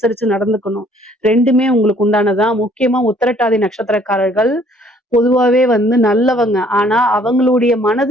நடந்துக்கணும். 2மே உங்களுக்கு உண்டானதான். முக்கியமா உத்திரட்டாதி நட்சத்திரக்காரர்கள் பொதுவாவே நல்லவங்க. ஆனா அவங்களுடைய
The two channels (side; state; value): both; normal; correlation 0.60